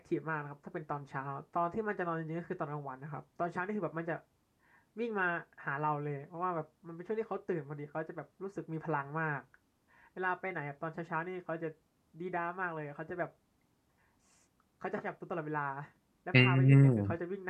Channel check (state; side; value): identical; both; correlation 1.00